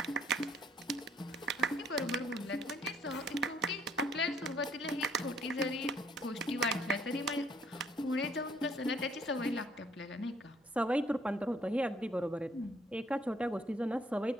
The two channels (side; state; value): both; normal; correlation 0.64